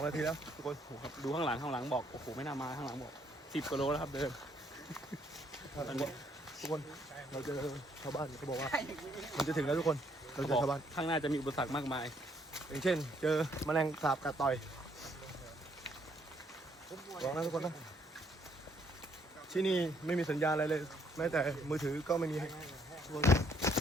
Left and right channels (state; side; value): normal; both; correlation 0.68